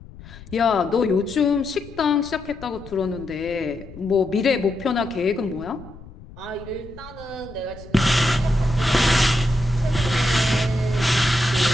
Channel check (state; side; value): noise; left; rumble, 18 dB below the sound